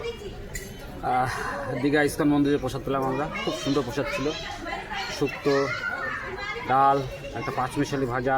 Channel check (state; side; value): identical; both; correlation 1.00